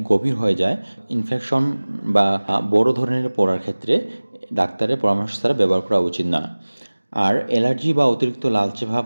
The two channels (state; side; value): inverted; both; correlation -1.00